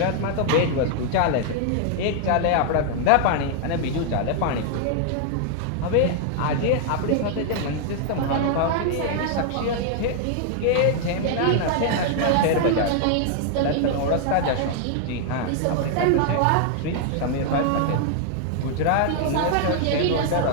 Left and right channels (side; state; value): both; different; correlation 0.00